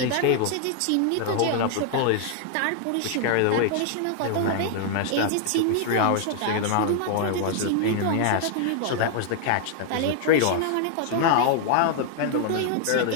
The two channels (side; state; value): both; different; correlation 0.00